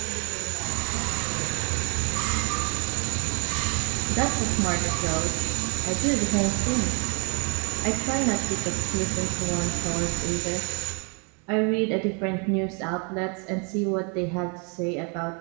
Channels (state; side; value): quieter; left; 36.1 dB